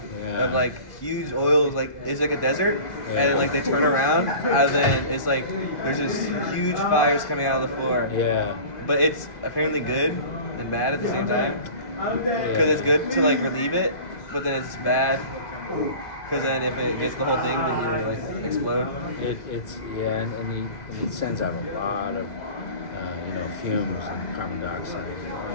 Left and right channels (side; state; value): right; late; 2.0 ms